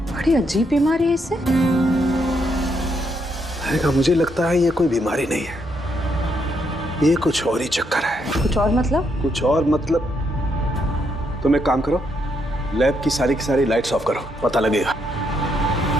बड़ी अजीब बीमारी है इसे। मुझे लगता है ये कोई बीमारी नहीं है, ये कुछ और ही चक्कर है। कुछ और मतलब? कुछ और मतलब तुम एक काम करो, लैब की सारी लाइट्स ऑफ करो, पता लगेगा।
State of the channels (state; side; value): normal; both; correlation 0.77